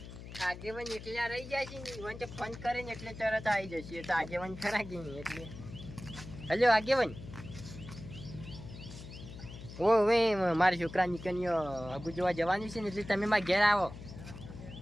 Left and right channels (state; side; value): noise; left; hum, 13 dB below the sound